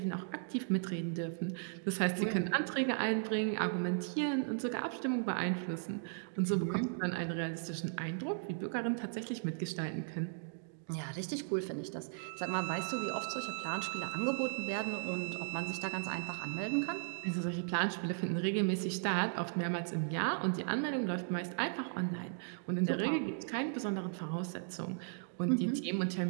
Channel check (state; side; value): silent; left; digital silence